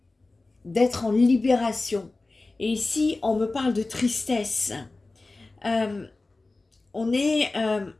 d'être en libération. Et ici, on me parle de tristesse. On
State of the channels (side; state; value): right; quieter; 3.3 dB